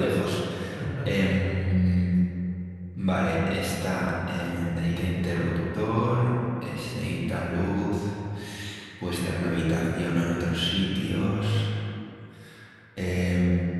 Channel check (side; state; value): both; identical; correlation 1.00